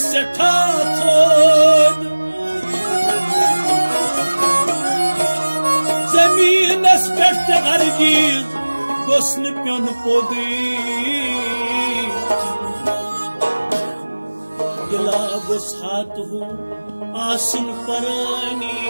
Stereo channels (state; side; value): inverted; both; correlation -1.00